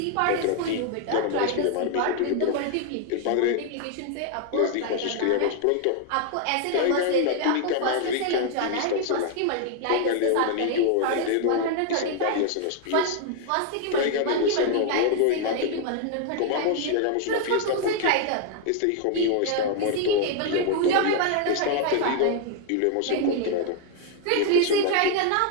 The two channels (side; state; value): both; different; correlation 0.00